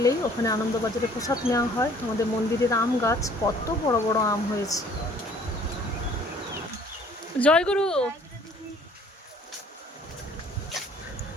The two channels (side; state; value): both; normal; correlation 0.56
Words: ওখানে আনন্দবাজারে প্রসাদ নেওয়া হয়। আমাদের মন্দিরের আম গাছ, কত বড় বড় আম হয়েছে। জয়গুরু।